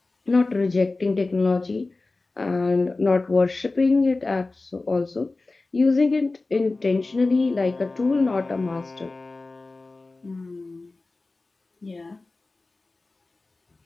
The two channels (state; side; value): quieter; right; 3.4 dB